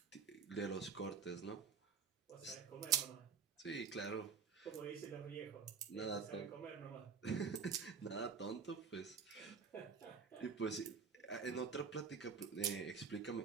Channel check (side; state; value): left; quieter; 6.0 dB